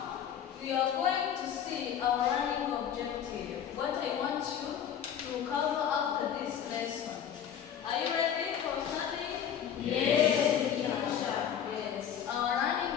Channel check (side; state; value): right; quieter; 8.9 dB